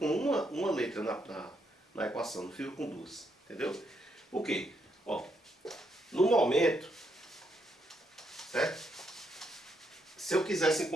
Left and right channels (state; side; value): normal; both; correlation 0.77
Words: uma letra na equação, não fica com duas, entendeu? Por quê? Ó, no momento, certo? Se eu quisesse